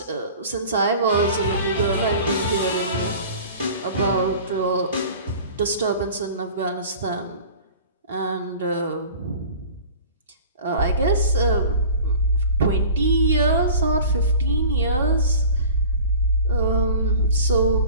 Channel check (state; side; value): inverted; both; correlation -0.41